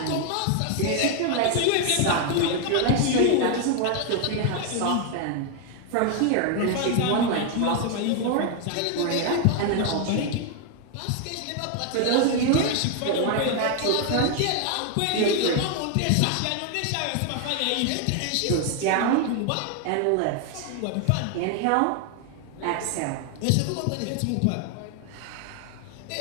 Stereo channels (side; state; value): both; different; correlation 0.00